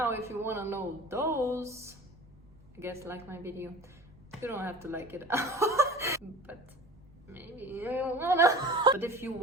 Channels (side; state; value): right; noise; rumble, 26 dB below the sound